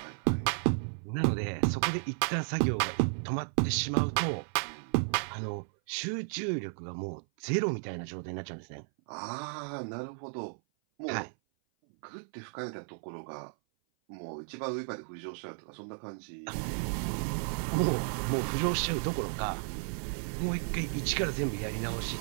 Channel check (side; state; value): left; silent; 55 dB below the other